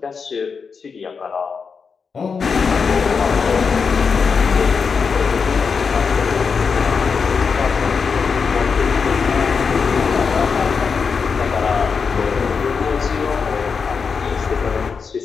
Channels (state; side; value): quieter; right; 5.6 dB